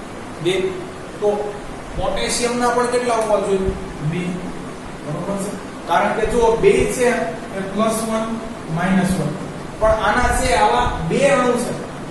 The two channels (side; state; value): both; identical; correlation 1.00